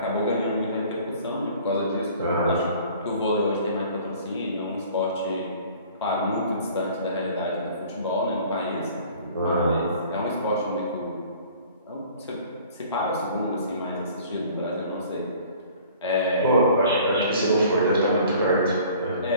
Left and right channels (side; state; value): both; inverted; correlation -0.50